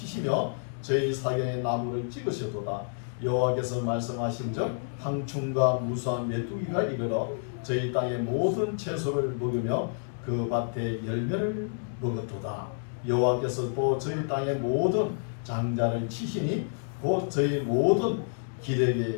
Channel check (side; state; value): right; silent; digital silence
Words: 저희 사경에 나무를 찍으셨도다. 여호와께서 말씀하신즉 황충과 무수한 메뚜기가 이르러 저희 땅의 모든 채소를 먹으며 그 밭의 열매를 먹었도다. 여호와께서 또 저희 땅의 모든 장자를 치시니 곧 저희 모든